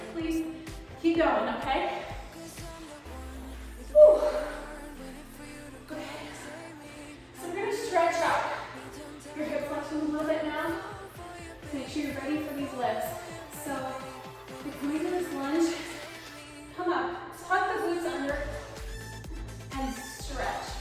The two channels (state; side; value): identical; both; correlation 1.00